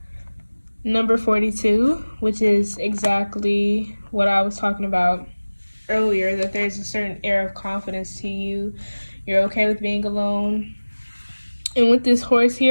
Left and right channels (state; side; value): inverted; both; correlation -1.00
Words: number 42, which is exactly what I was talking about earlier, that there's a certain air of confidence to you. You're okay with being alone. And with this horse